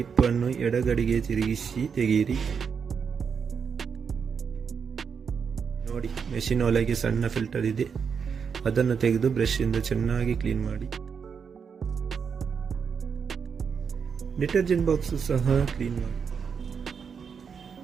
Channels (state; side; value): quieter; left; 6.4 dB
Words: ಎಡಗಡೆಗೆ ತಿರುಗಿಸಿ ತೆಗೆಯಿರಿ. ನೋಡಿ, ಮೆಷಿನ್ ಒಳಗೆ ಸಣ್ಣ ಫಿಲ್ಟರ್ ಇದೆ, ಅದನ್ನು ತೆಗೆದು ಬ್ರಷ್ ಇಂದ ಚೆನ್ನಾಗಿ ಕ್ಲೀನ್ ಮಾಡಿ. ಡಿಟರ್ಜೆಂಟ್ ಬಾಕ್ಸ್ ಸಹ ಕ್ಲೀನ್ ಮಾಡಿ